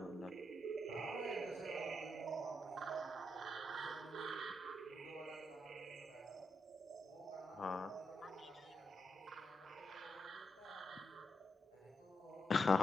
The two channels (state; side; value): normal; both; correlation 0.83